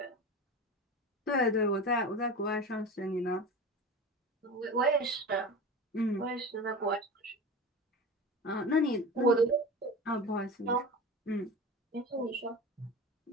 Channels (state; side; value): normal; both; correlation 0.30